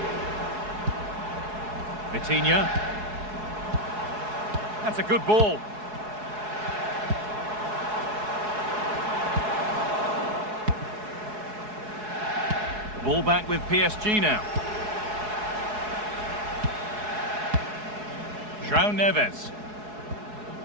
Vitinha. That's a good ball. Ball back with PSG now. João Neves.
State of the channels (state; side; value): late; left; 4.7 ms